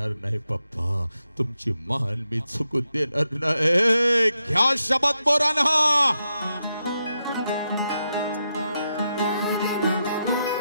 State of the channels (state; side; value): inverted; both; correlation -0.85